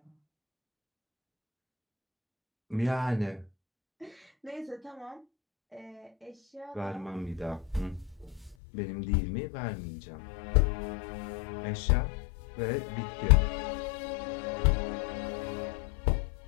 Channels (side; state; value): right; drops out; at 8.6 s